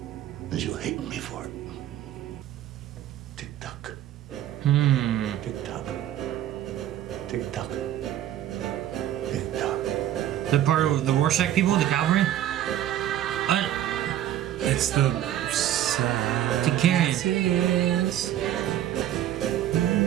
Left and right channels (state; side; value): quieter; left; 11.9 dB